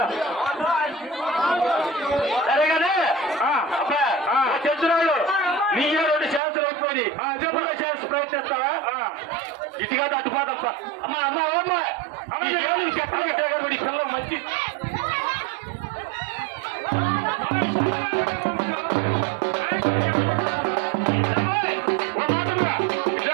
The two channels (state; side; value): drops out; left; at 6.4 s